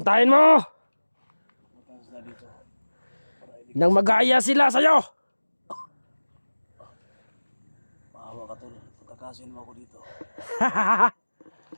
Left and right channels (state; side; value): inverted; both; correlation -1.00